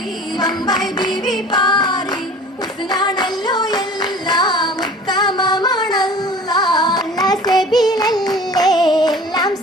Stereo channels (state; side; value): normal; both; correlation 0.43